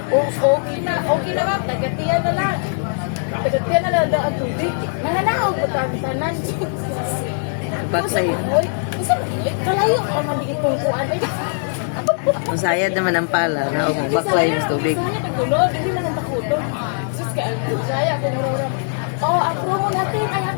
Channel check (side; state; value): right; silent; 65 dB below the other